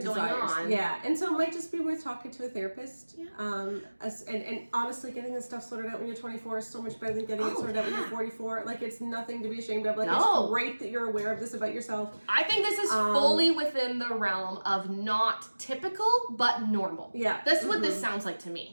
going on. Yeah, and so it might just be worth talking to a therapist. Yeah. And honestly, getting this stuff sorted out when you're 24 is so much better than getting it sorted out when you're 44. Like, it's nothing to be ashamed of. Like, it's great that you're aware of this about yourself. I think this is fully within the realm of not typical, but normal. Yeah. That's what this sounds like to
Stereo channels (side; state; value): both; inverted; correlation -1.00